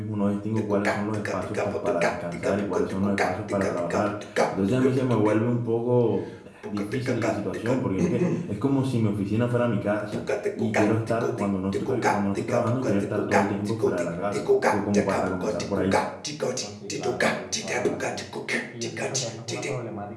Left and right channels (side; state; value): both; identical; correlation 1.00